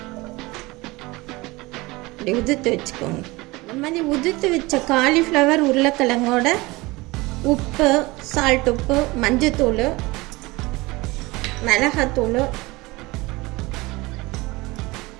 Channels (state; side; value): quieter; left; 22.2 dB